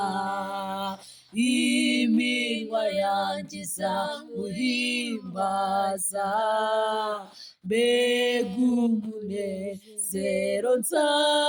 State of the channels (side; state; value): both; identical; correlation 1.00